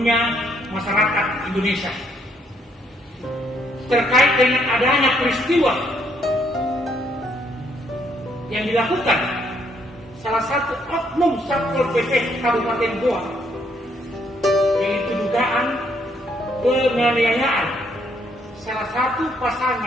masyarakat Indonesia terkait dengan adanya peristiwa yang dilakukan salah satu oknum Satpol PP Kabupaten Goa, yaitu dugaan penganiayaan salah satu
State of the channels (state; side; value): normal; both; correlation 0.70